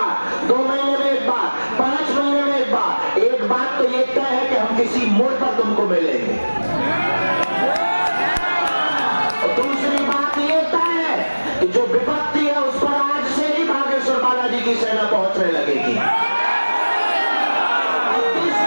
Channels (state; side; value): inverted; both; correlation -1.00